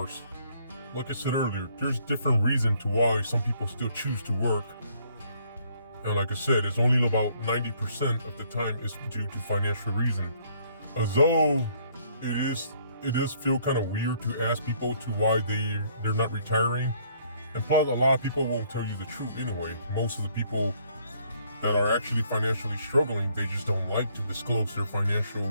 like I said earlier, there's different reasons to why some people still choose to work. And like I said, it's only about 90% of the time is due to financial reason. Although it does feel kind of weird to ask people to why they're not retiring. And plus, a lot of people won't tell you the truth anyway. Most of the people that are actually financially struggling, they just don't like to disclose their financial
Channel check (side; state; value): both; inverted; correlation -0.65